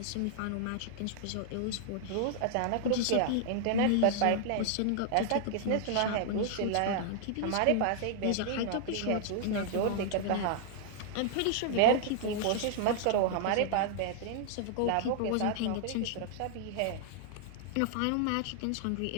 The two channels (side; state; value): both; different; correlation -0.01